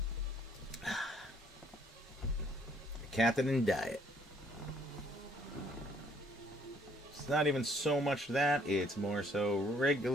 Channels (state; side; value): normal; both; correlation 0.64